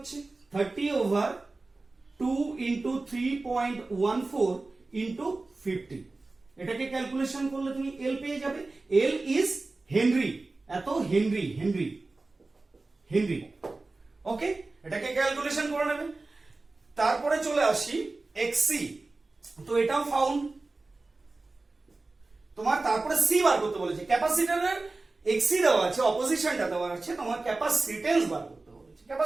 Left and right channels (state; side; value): quieter; left; 3.4 dB